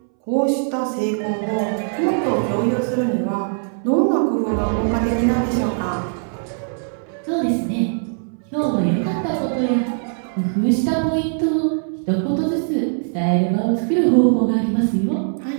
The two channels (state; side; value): silent; left; 65 dB below the other